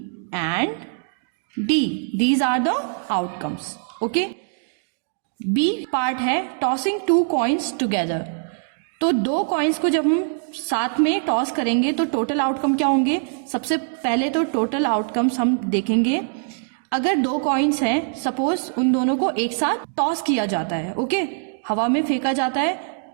and D. These are the outcomes. Okay, B part है टॉसिंग 2 कॉइन्स टुगेदर. तो 2 कॉइन्स को जब हम साथ में टॉस करेंगे तो टोटल आउटकम क्या होंगे? सबसे पहले तो टोटल आउटकम्स हम देखेंगे. अगर 2 कॉइन्स हैं, सपोज उन दोनों को एक साथ टॉस किया जाता है. ओके, हवा में फेंका जाता है,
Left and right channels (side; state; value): left; silent; digital silence